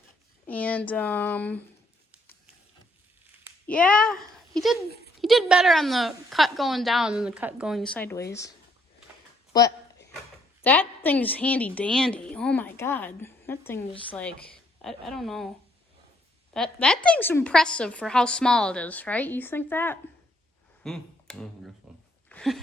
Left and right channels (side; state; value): both; normal; correlation 0.69